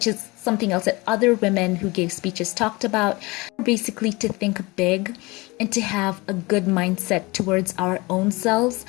is something else that other women who gave speeches talked about. Basically, to think big and to have a good mindset towards our own selves.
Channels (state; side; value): quieter; right; 23.7 dB